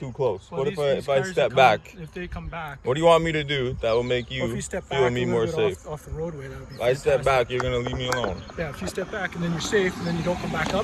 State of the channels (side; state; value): both; identical; correlation 1.00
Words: close. Well, What these if I cars step that back? if they come back. What do you want me to do that will make Well, if you you step feel back me a more little bit safe? off the roadway, that would be If I step fantastic. back, you're gonna leave me alone. Yeah, if you step back and then you're safe, and then you don't come back